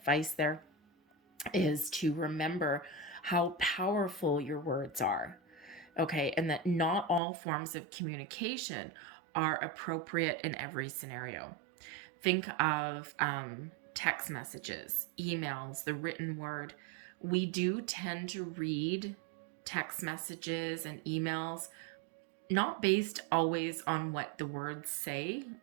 there, is to remember how powerful your words are. Okay, and that not all forms of communication are appropriate in every scenario. Think of text messages, emails, the written word. We do tend to read text messages and emails not based always on what the words say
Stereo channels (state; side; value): drops out; left; at 7.2 s